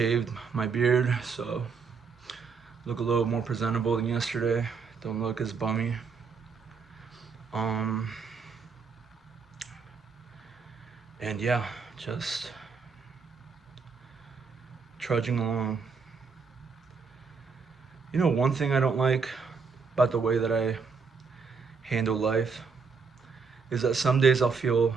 my beard, so look a little more presentable than yesterday. Don't look as bummy. Um, and yeah, just trudging along. You know, one thing I don't like about the way that I handle life is that some days I'll feel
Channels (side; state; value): left; quieter; 5.2 dB